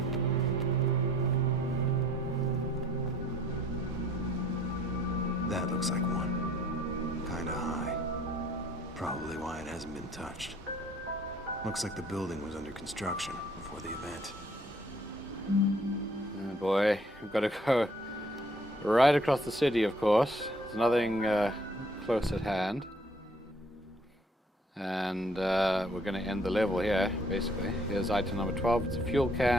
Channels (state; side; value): normal; both; correlation 0.60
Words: That looks like one. Kinda high. Probably why it hasn't been touched. Looks like the building was under construction before the event. Oh boy, we've got to go right across the city, of course. There's nothing close at hand. And we're going to end the level here, basically. Here's item number 12. It's a fuel